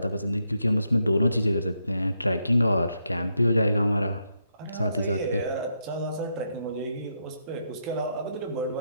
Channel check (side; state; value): both; inverted; correlation -0.80